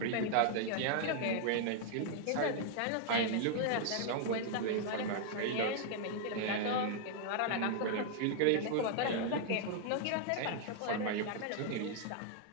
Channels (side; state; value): both; different; correlation 0.00